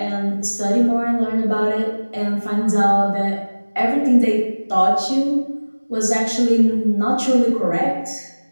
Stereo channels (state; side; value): inverted; both; correlation -1.00